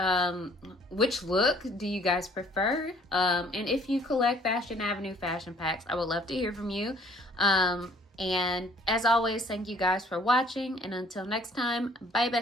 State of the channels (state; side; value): normal; both; correlation 0.58